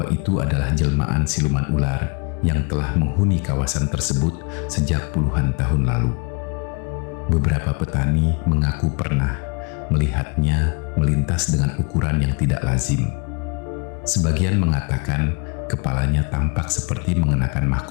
itu adalah jelmaan siluman ular yang telah menghuni kawasan tersebut sejak puluhan tahun lalu. Beberapa petani mengaku pernah melihatnya melintas dengan ukuran yang tidak lazim. Sebagian mengatakan kepalanya tampak seperti mengenakan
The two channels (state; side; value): quieter; right; 33.3 dB